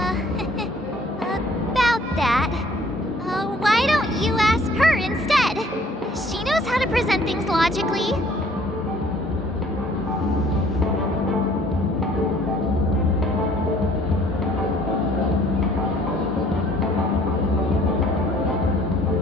about that. Why don't you ask her instead? She knows how to present things logically.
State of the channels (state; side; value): normal; both; correlation 0.57